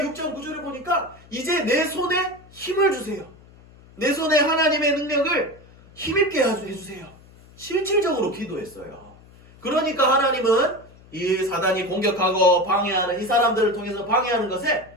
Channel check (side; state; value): left; noise; hum, 24 dB below the sound